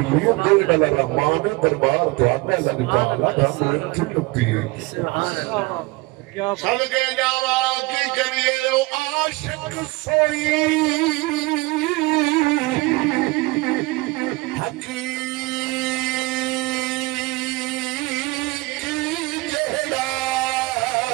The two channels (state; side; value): quieter; left; 23.5 dB